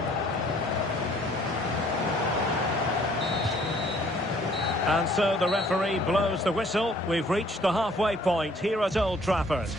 And so the referee blows the whistle. We've reached the halfway point here at Old Trafford.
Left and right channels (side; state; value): both; normal; correlation 0.59